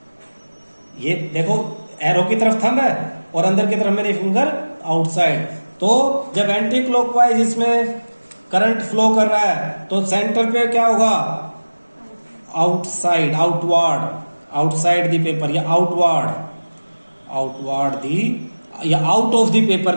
ये देखो एरो की तरफ थंब है और अंदर की तरफ मेरी फिंगर आउटसाइड। तो जब एंटी क्लॉकवाइज इसमें करंट फ्लो कर रहा है तो सेंटर पे क्या होगा, outside, outward, outside the paper, या आउटवर्ड, आउटवर्ड दी, या आउट ऑफ द पेपर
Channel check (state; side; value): inverted; both; correlation -1.00